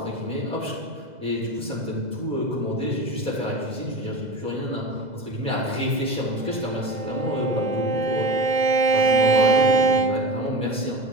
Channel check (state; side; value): late; left; 2.0 ms